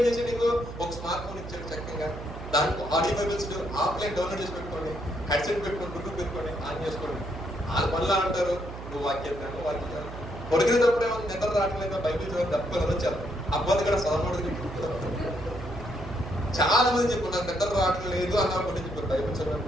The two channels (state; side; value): noise; right; hum, 11 dB below the sound